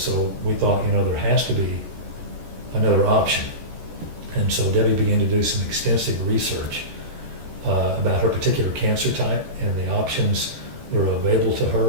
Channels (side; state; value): left; late; 14 ms